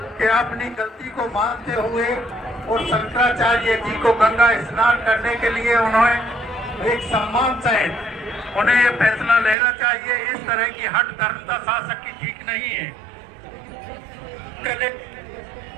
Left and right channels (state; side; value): drops out; left; at 9.6 s